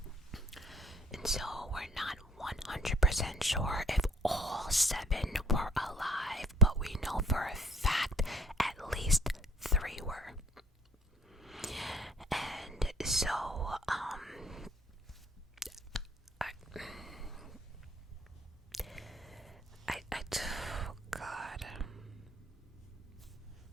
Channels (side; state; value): both; normal; correlation 0.57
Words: And so we're not 100% sure if all 7 were alive, but we know for a fact at least 3 were. And so, oh God.